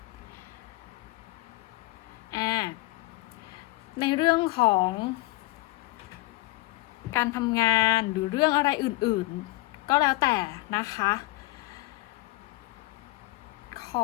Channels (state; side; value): quieter; right; 21.0 dB